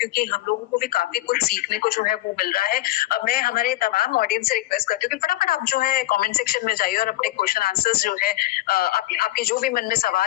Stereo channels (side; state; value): right; quieter; 16.8 dB